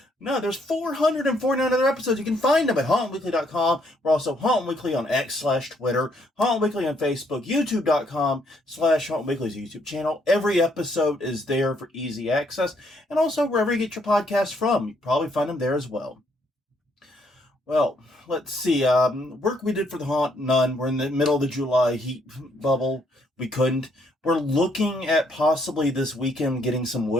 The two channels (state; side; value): normal; both; correlation 0.70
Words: there's 449 other episodes. You can find them at hauntweekly.com. We're also Haunt Weekly on X/Twitter, Haunt Weekly on Facebook, youtube.com/Haunt Weekly's YouTube channel. Every episode is there for easy access. And also wherever you get your podcasts from, you probably find them there as well. Well, let's see. Work we did for the haunt, none. We're in the middle of the July heat bubble. We couldn't. We're looking at possibly this weekend getting some